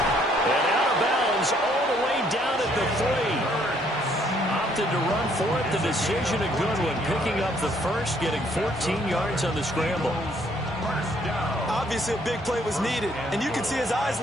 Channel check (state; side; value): normal; both; correlation 0.66